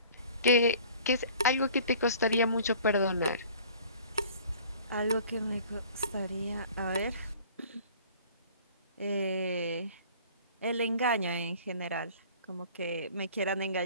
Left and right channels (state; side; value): inverted; both; correlation -0.49